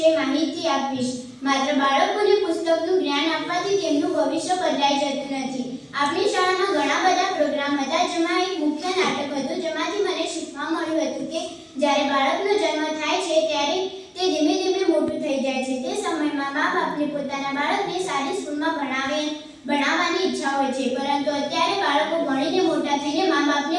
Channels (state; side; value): identical; both; correlation 1.00